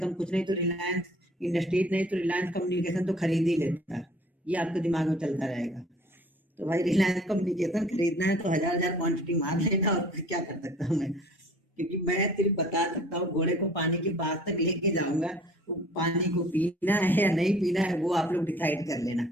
कुछ नहीं तो रिलायंस इंडस्ट्रीज नहीं तो रिलायंस कम्युनिकेशन तो खरीद ही लेता। ये आपके दिमाग में चलता रहेगा। तो भाई रिलायंस कम्युनिकेशन खरीदना है तो हजार क्वांटिटी मार लेना, और क्या कर सकता हूँ मैं। क्योंकि मैं सिर्फ बता सकता हूँ, घोड़े को पानी के पास तक लेके जाऊंगा, वो पानी को पीना है या नहीं पीना है वो आप लोग डिसाइड कर लेना।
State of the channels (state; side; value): normal; both; correlation 0.51